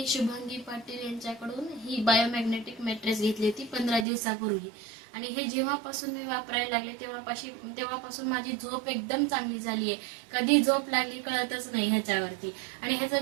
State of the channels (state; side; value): drops out; left; at 4.0 s